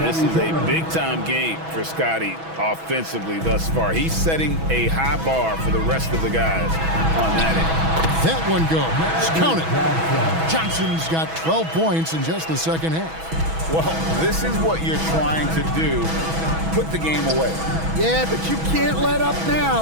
is a big-time game for Scotty offensively thus far. He's setting a high bar for the rest of the guys on that end. That one goes. Count it. Johnson's got 12 points in just the second half. Well, this is what you're trying to do. Put the game away. Yeah, but you can't let up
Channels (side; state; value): left; late; 6.1 ms